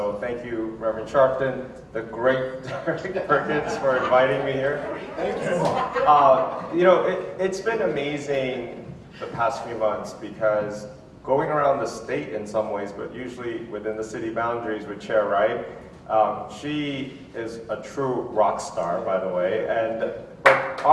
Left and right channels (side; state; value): both; identical; correlation 1.00